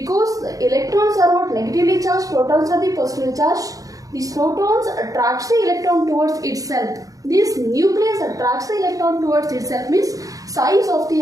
the electrons are not negatively charged, protons are the positively charged. These protons attracts the electron towards itself. This nucleus attracts the electron towards itself means size of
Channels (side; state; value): left; late; 0.17 ms